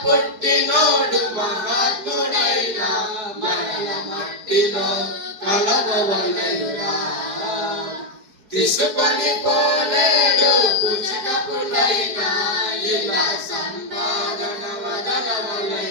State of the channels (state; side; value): late; left; 5.0 ms